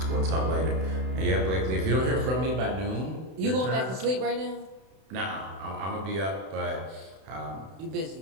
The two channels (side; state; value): left; late; 32 ms